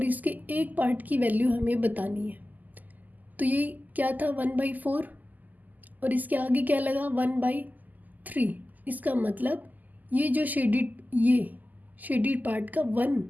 इसके एक पार्ट की वैल्यू हमें बतानी है। तो ये क्या था? 1/4 और इसके आगे क्या लगा 1/3। इसका मतलब ये जो शेडिड पार्ट का 1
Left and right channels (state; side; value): late; left; 0.082 ms